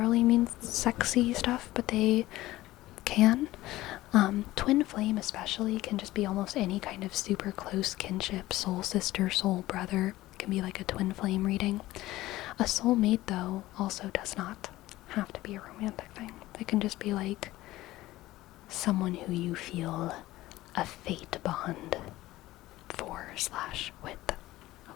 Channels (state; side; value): quieter; right; 16.9 dB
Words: mean sexy stuff, but they can. Twin flame especially can just be almost any kind of super close kinship, soul sister, soul brother. It can be like a twin flame reading. A soulmate, though, also does not have to be a romantic thing. It can just be like someone who you feel a fate bond for/with.